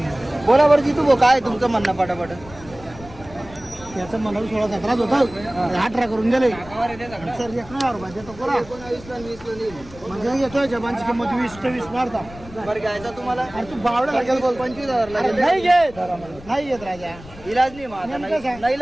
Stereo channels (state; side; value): noise; left; rumble, 18 dB below the sound